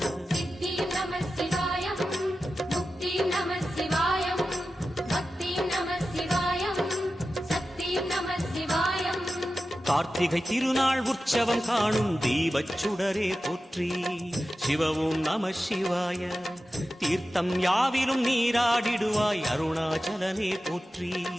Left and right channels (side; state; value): both; normal; correlation 0.93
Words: சித்தியும் நம சிவாயம், முக்தியும் நம சிவாயம், பக்தியும் நம சிவாயம், சக்தியும் நம சிவாயம். கார்த்திகை திருநாள் உற்சவம் காணும் தீபச் சுடரே போற்றி. சிவ ஓம் நம சிவாய. தீர்த்தம் யாவிலும் நீராடிடுவாய் அருணாச்சலனே போற்றி.